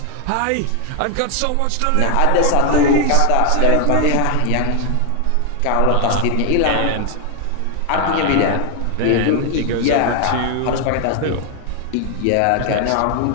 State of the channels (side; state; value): both; different; correlation 0.00